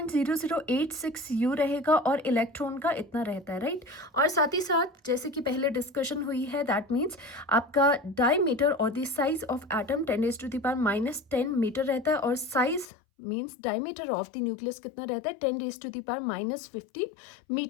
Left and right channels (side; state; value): right; drops out; at 12.9 s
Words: U रहेगा और इलेक्ट्रॉन का इतना रहता है, राइट। और साथ ही साथ जैसे कि पहले डिस्कशन हुई है, दैट मीन्स आपका डायमीटर और the size of atom 10⁻10 metre रहता है, और size means diameter of the nucleus कितना रहता है, 10⁻15